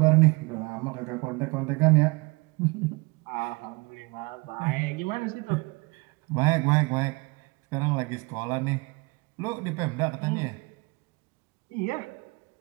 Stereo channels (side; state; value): left; quieter; 26.9 dB